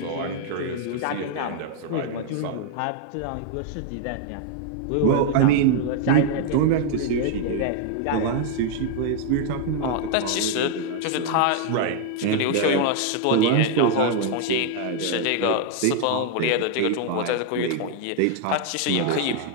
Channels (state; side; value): different; both; correlation 0.00